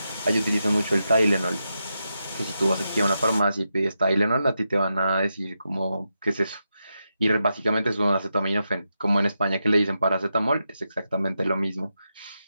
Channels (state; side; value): inverted; both; correlation -0.87